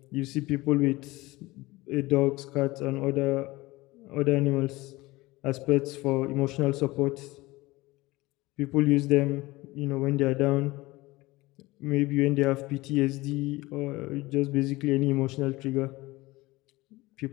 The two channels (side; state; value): right; quieter; 20.4 dB